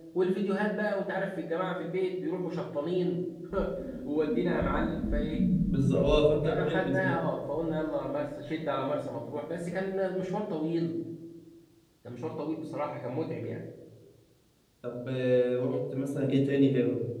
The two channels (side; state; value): both; identical; correlation 1.00